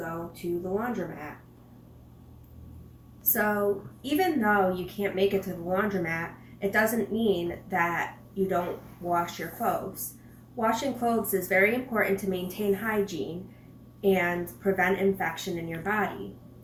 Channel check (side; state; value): both; identical; correlation 1.00